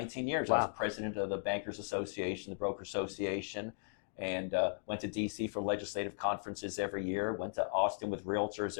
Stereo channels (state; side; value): silent; right; digital silence